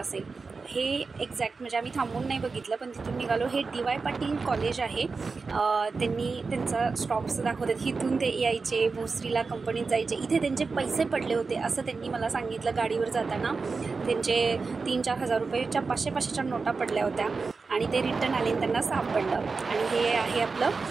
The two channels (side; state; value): left; quieter; 4.4 dB